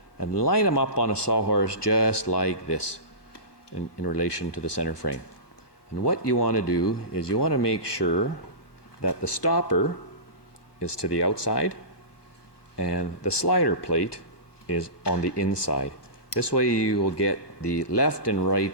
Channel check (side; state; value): right; late; 1.2 ms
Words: and line them up on a sawhorse just like this in relation to the center frame. And what you want to do is you want to make sure that the stopper is to the outside and the slider plate is on the inside. This way you will get the left and